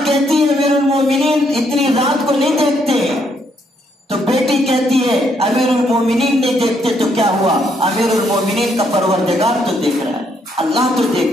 کہتی ہے امیر المومنین اتنی رات کو نہیں دیکھتے، تو بیٹی کہتی ہے امیر المومنین نہیں دیکھتے تو کیا ہوا، امیر المومنین کا پروردگار تو دیکھ رہا ہے، اللہ تو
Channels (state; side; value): normal; both; correlation 0.73